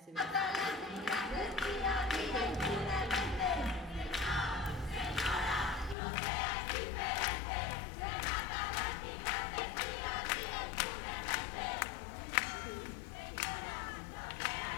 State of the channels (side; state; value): right; drops out; at 6.0 s